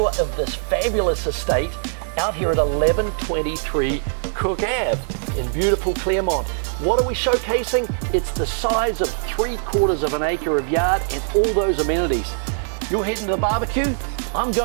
of this fabulous estate out here at 1123 Cooke Ave in beautiful Claremont. What are we showcasing? It's the size of 3/4 of an acre of yard and all those amenities. You're heading to the barbecue? I'm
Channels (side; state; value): left; silent; 64 dB below the other